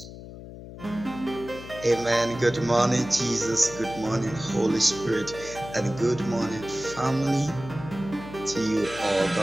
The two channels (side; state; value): left; noise; hum, 13 dB below the sound